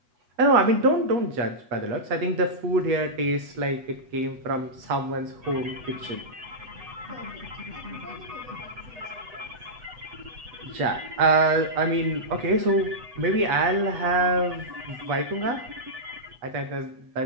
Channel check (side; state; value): left; late; 8.0 ms